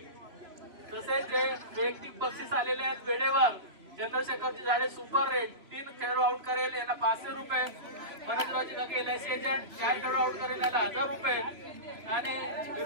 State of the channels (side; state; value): left; late; 3.0 ms